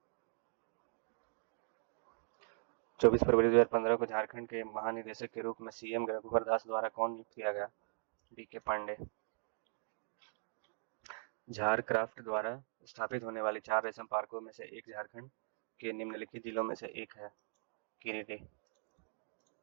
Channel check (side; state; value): left; silent; digital silence